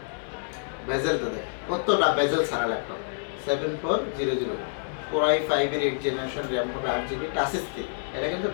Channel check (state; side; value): silent; right; digital silence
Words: বেজেলটা দেখেন কতটা বেজেল ছাড়া ল্যাপটপ, 7400 Core i5 এর 8 জেনারেশন, র্যাম হবে 8GB, টাচ স্ক্রিন, এটা কিন্তু